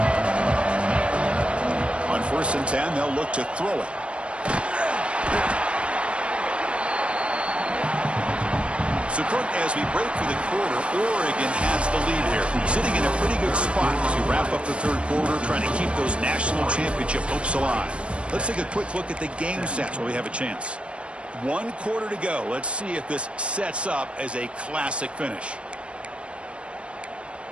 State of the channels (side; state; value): left; late; 0.059 ms